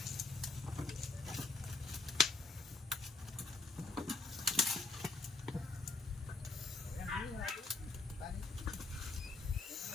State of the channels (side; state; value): right; quieter; 3.8 dB